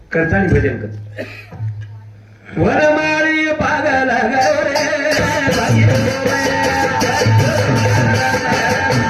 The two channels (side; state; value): both; identical; correlation 1.00